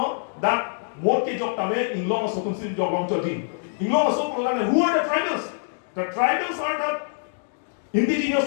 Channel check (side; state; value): right; silent; digital silence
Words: that what ke jok tame in law so tunsin jok long choti. In law so program who are the tribals? The tribals are the